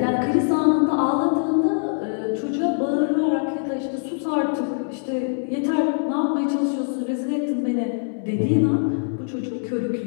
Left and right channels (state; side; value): silent; right; digital silence